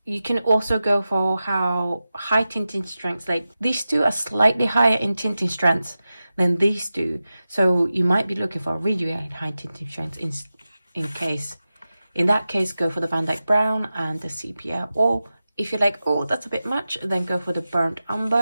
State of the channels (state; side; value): inverted; both; correlation -0.94